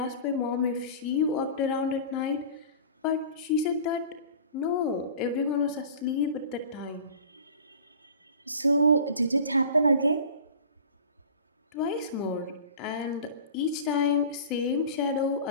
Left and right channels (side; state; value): both; inverted; correlation -0.40